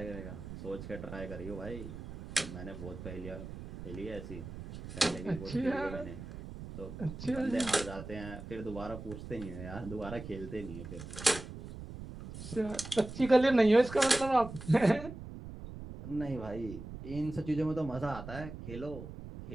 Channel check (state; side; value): noise; right; rumble, 11 dB below the sound